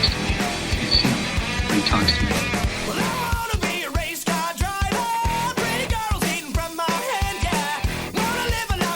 to me. You see him, but he talks to me. Well, I wanna be a race car driver. Pretty girls eating from my hand, yeah. Wanna live a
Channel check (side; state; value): both; identical; correlation 1.00